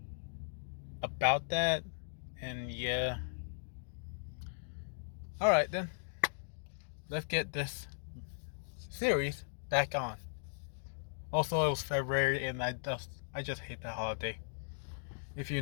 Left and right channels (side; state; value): right; silent; digital silence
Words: about that, and yeah. Alright then, let's get this series back on. Also, it was February, and I just hate that holiday. If you